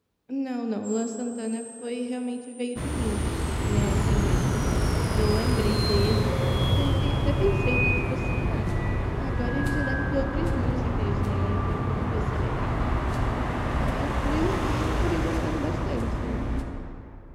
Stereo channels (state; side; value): identical; both; correlation 1.00